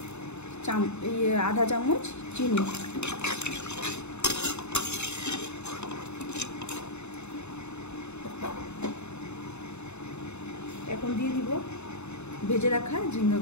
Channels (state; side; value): late; right; 0.81 ms